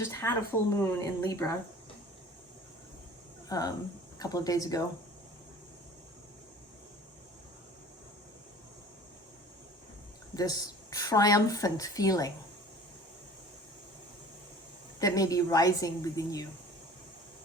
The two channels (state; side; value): normal; both; correlation 0.45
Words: had a full moon in Libra a couple of days ago. This triumphant feeling that may be rising within you.